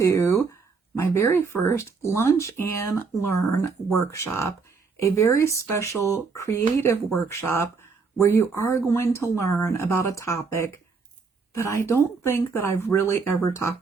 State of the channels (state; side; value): quieter; left; 4.8 dB